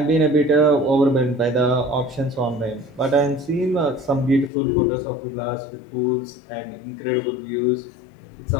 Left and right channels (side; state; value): right; drops out; at 4.5 s